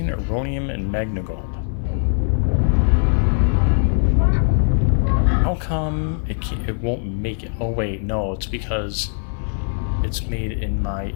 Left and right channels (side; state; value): right; silent; 59 dB below the other